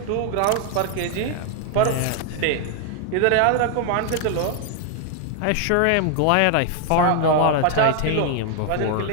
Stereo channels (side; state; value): both; different; correlation 0.00